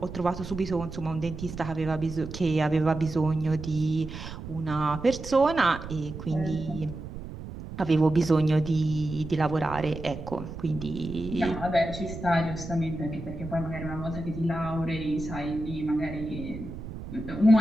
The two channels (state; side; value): noise; right; rumble, 10 dB below the sound